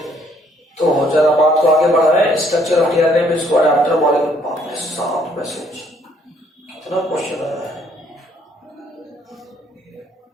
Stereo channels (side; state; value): both; normal; correlation 0.65